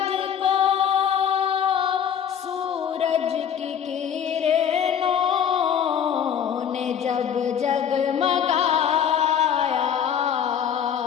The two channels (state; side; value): quieter; right; 8.5 dB